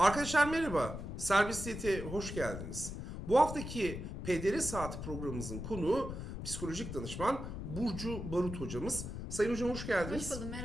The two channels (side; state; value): left; noise; rumble, 7 dB below the sound